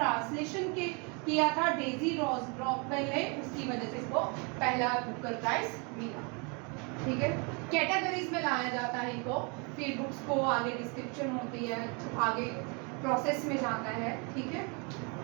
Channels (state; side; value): quieter; left; 33.2 dB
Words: किया था डेजी रॉकवेल ने, उसकी वजह से इसको पहला बुकर प्राइज मिला। ठीक है, कैटेगरीज में लाया जाता है इनको, फिर बुक्स को आगे डिस्क्रिप्शन होती है, आगे प्रोसेस में जाता है। ठीक है,